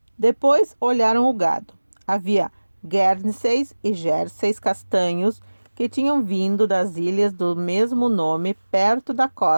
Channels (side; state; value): both; inverted; correlation -1.00